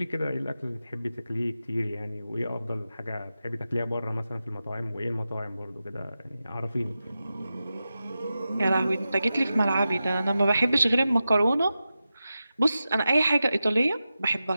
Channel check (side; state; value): both; inverted; correlation -0.92